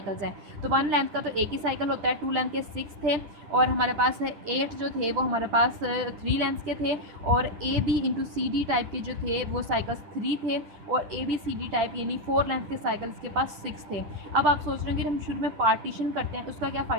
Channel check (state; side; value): late; left; 10 ms